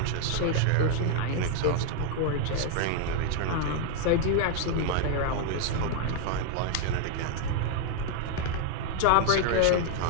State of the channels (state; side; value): different; both; correlation 0.00